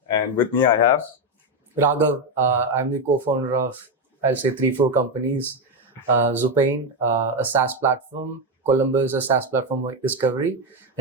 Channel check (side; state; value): both; normal; correlation 0.09